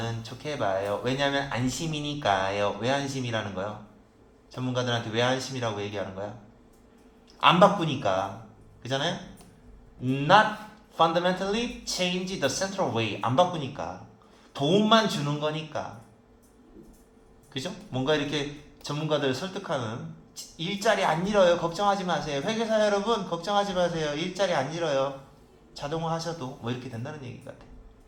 좋게 봐요. 왜냐하면 안심이니까요. 왜 안심이라는 거요? 전문가들한테 왜 안심이라고 얘기하는 거야? 안 바꾸니까. 그잖아요? Not fundamentally change the central way. 안 바꾸니까. 도움만 주는 거니까. 그죠? 뭔가 이렇게 전문가들 설득하는 일자리 안 잃어요. 걱정하지 마세요. 회계사 여러분 걱정하지 마세요. 일자리 안 잃어요. 자동화 하셔도 뭐 이렇게 된다는 얘기 같아.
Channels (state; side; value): identical; both; correlation 1.00